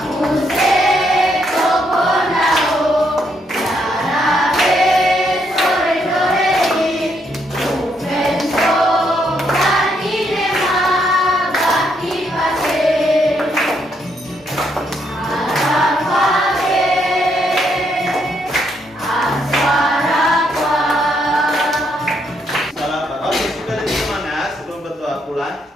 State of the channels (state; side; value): normal; both; correlation 0.75